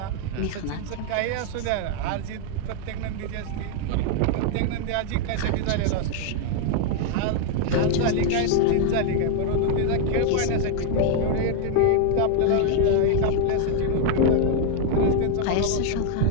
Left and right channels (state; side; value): different; both; correlation 0.00